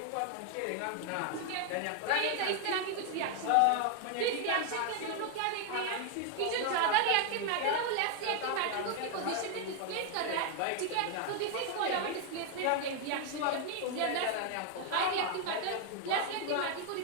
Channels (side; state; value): both; different; correlation 0.00